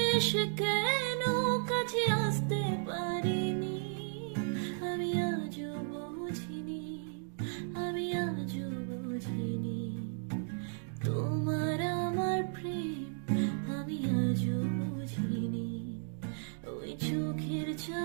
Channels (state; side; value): silent; left; digital silence